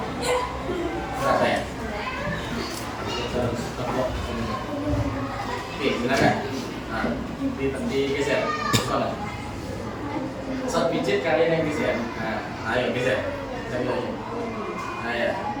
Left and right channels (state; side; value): identical; both; correlation 1.00